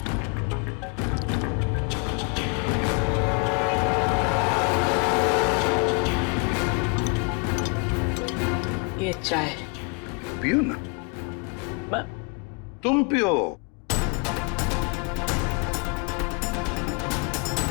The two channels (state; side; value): quieter; right; 31.8 dB